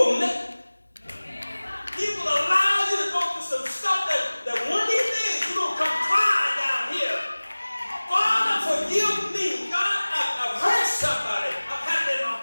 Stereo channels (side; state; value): both; inverted; correlation -1.00